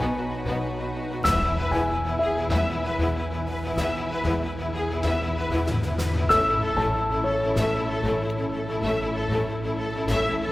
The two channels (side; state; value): right; noise; hum, 11 dB below the sound